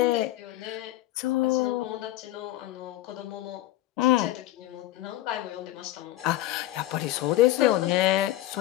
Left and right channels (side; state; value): right; quieter; 15.5 dB